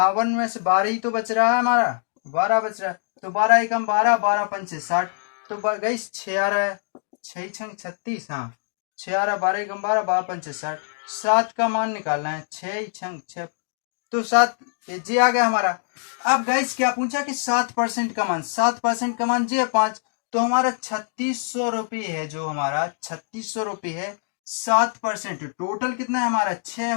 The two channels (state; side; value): silent; right; digital silence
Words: में से 12 ही तो बच रहा है हमारा, 12 बच रहा है। तो 12 एकम 12, 12 पंचे 60, तो गई 6 आ रहा है। 6 छंग 36, हाँ 6 12 एकम 12 12 पंचे 60, 7 का मान निकालना है, 6 छंग 6 तो 7 जी आ गया हमारा। अब गाइस क्या पूछा कि 7% का मान, 7% का मान जी है 5, तो हमारा 3600 रुपये है, जो हमारा 3600 रुपये है 7%, टोटल कितना है हमारा 6